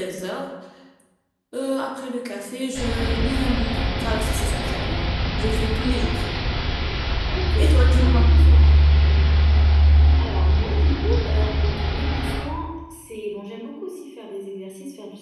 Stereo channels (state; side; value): identical; both; correlation 1.00